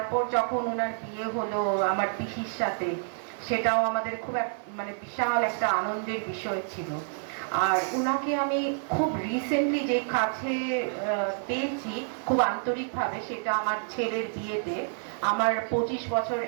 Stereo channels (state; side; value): silent; left; digital silence